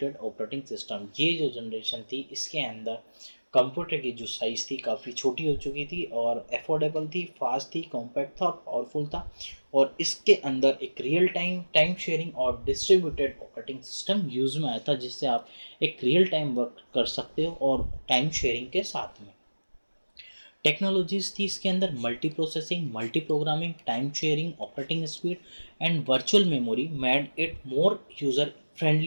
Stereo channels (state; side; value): inverted; both; correlation -1.00